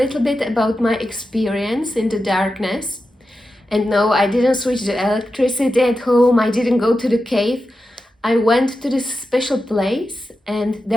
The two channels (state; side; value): normal; both; correlation 0.91